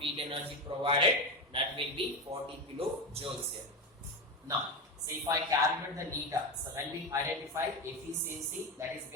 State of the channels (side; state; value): both; normal; correlation 0.17